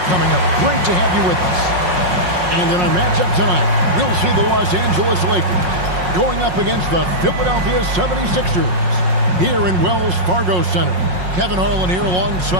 coming up. Great to have you with us. And in our matchup tonight, we'll see the Los Angeles Lakers going up against the Philadelphia 76ers here in Wells Fargo Center. Kevin Harlan here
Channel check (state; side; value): late; left; 5.5 ms